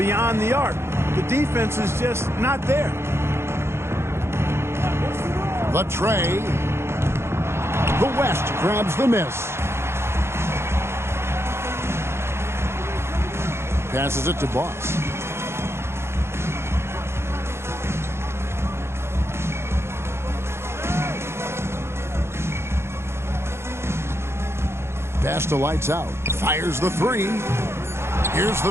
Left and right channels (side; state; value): left; late; 0.12 ms